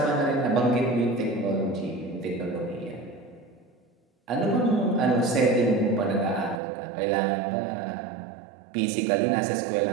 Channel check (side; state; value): left; drops out; at 6.6 s